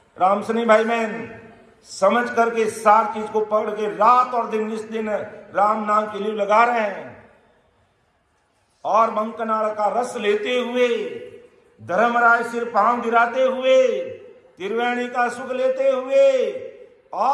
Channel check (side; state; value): both; identical; correlation 1.00